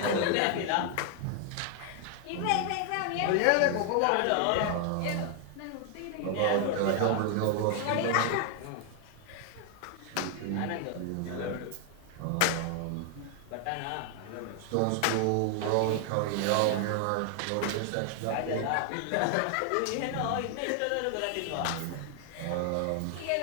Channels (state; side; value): different; both; correlation 0.00